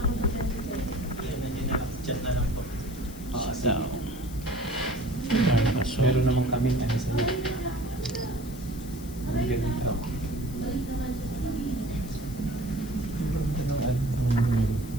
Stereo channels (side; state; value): left; noise; hiss, 17 dB below the sound